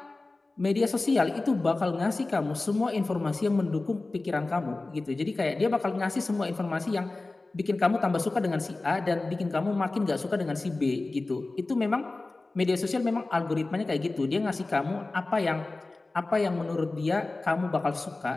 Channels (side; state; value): right; quieter; 3.2 dB